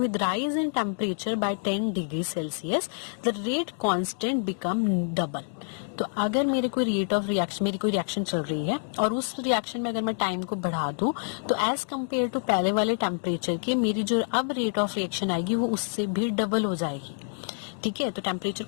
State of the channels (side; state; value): right; silent; digital silence